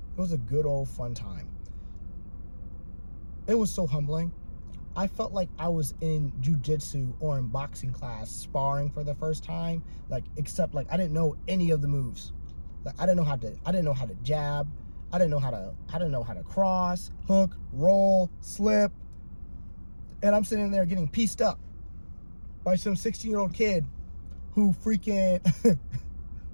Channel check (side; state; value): both; inverted; correlation -1.00